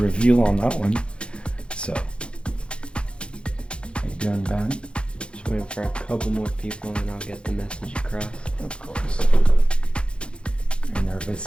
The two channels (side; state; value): right; late; 0.056 ms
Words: on that one. So, how you doing, Ben? Just waiting for a couple more people and I'll get the message across. Of course. Are you